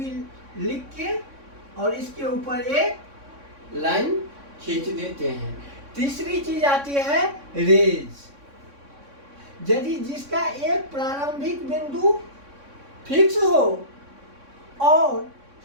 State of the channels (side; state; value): left; late; 3.6 ms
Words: लिख के और इसके ऊपर एक लाइन खींच देते हैं। तीसरी चीज आती है रेज। यदि जिसका एक प्रारंभिक बिंदु फिक्स हो और